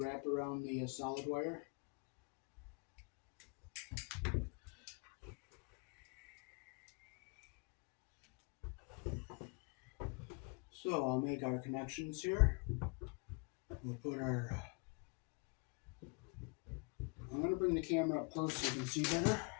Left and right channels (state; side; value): quieter; right; 32.1 dB